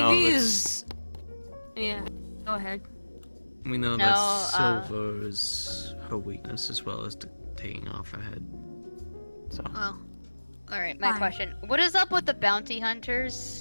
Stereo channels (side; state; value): both; inverted; correlation -1.00